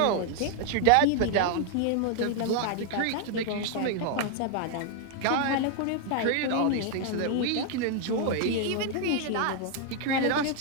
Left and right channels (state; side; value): different; both; correlation 0.00